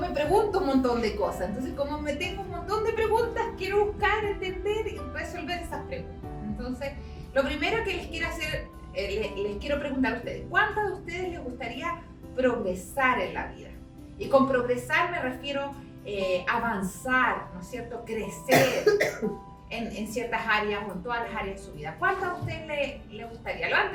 pregunto un montón de cosas. Entonces, como me tengo un montón de preguntas, quiero buscar, entender y resolver esas preguntas. Entonces, lo primero que les quiero hacer, les quiero preguntar a ustedes: ¿cuántos de ustedes les gustaría progresar en la vida? Y con progresar me refiero a avanzar, ¿no es cierto? Crecer en ciertas áreas o en todas las áreas de su vida. ¿Cuántos a ustedes les gustaría?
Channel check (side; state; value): both; identical; correlation 1.00